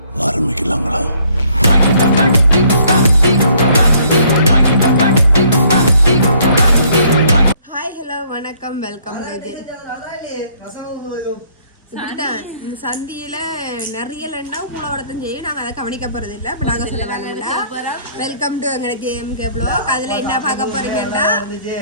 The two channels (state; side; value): inverted; both; correlation -0.63